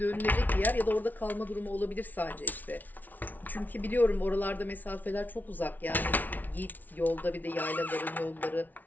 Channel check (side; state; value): right; late; 0.080 ms